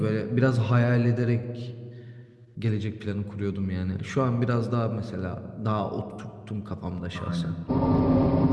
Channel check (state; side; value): identical; both; correlation 1.00